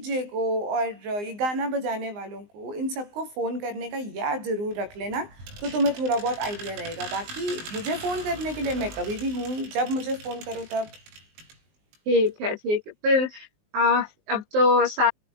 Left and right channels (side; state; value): left; late; 19 ms